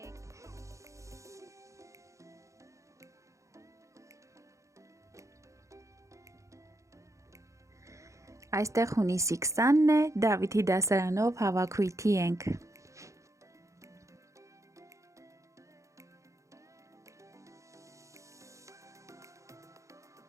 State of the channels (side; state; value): left; late; 0.15 ms